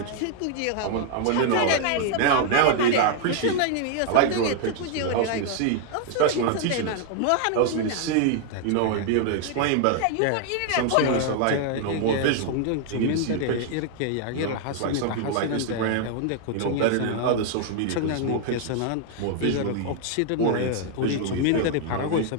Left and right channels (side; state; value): both; different; correlation 0.00